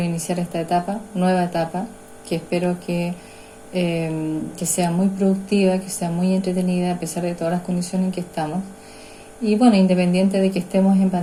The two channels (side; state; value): both; identical; correlation 1.00